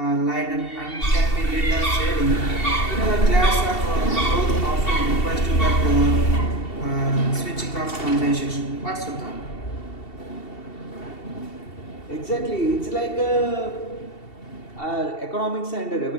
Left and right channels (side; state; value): right; late; 2.7 ms